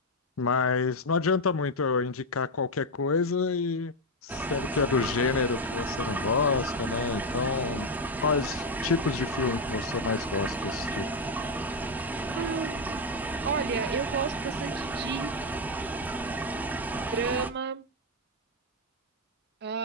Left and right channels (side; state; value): both; normal; correlation 0.05